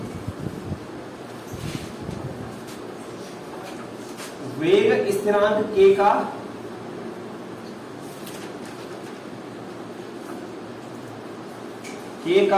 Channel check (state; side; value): identical; both; correlation 1.00